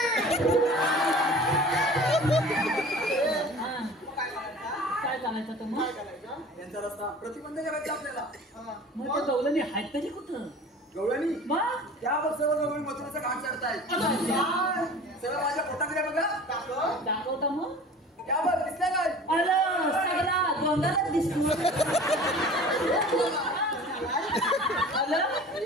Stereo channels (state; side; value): normal; both; correlation 0.42